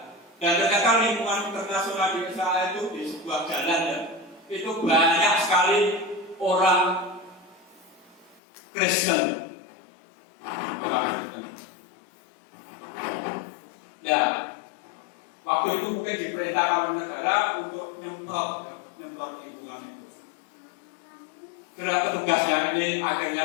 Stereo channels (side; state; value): right; drops out; at 8.4 s